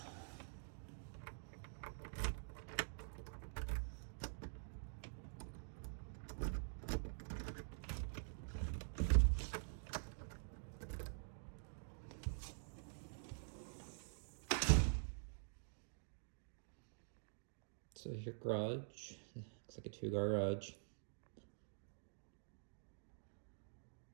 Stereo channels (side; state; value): left; silent; digital silence